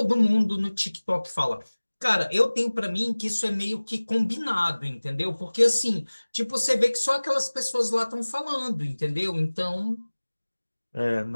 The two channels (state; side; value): inverted; both; correlation -1.00